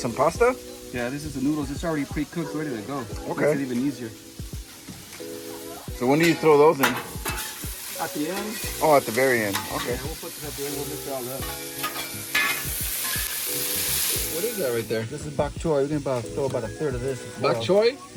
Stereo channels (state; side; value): identical; both; correlation 1.00